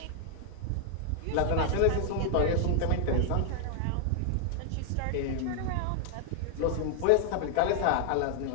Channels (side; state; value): both; different; correlation 0.00